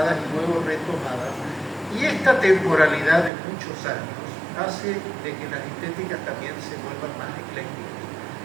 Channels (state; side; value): drops out; left; at 3.3 s